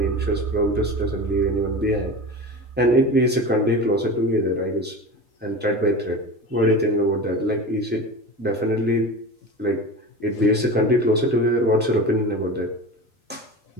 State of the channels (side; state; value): both; normal; correlation 0.30